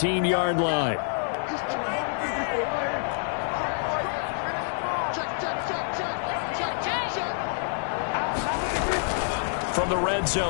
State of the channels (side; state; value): right; silent; digital silence